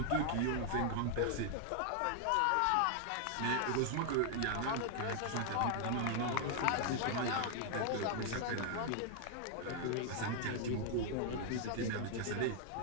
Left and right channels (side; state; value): both; different; correlation 0.00